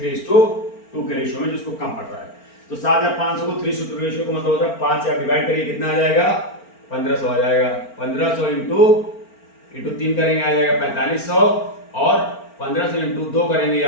के रेशियो में, जिसको कम पड़ रहा है। तो 7,500 को 3:2 रेशियो को मतलब होता है 5 से आप डिवाइड करिए, कितना आ जाएगा? 1,500 आ जाएगा। 1,500 इंटू 3 करेंगे आ जाएगा 4,500, और 1,500 इंटू 2 करेंगे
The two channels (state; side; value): late; right; 4.4 ms